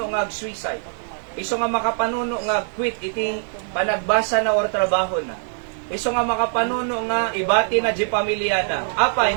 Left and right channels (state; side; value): silent; left; digital silence